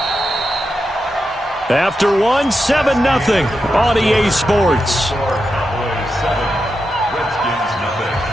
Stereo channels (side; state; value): both; normal; correlation 0.87